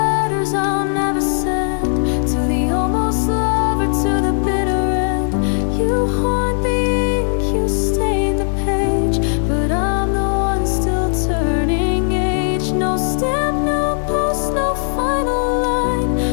letters I'll never send, to the almost lover, to the bitter end. You haunt the ink, you stain the page, but I'm the one still turning age. No stamp, no post, no final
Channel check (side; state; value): right; silent; digital silence